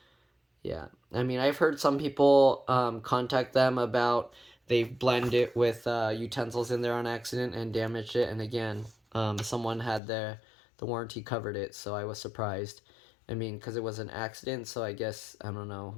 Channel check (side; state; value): right; drops out; at 10.0 s